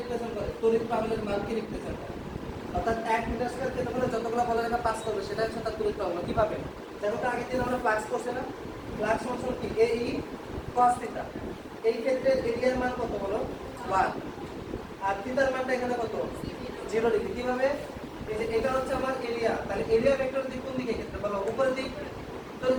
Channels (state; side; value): identical; both; correlation 1.00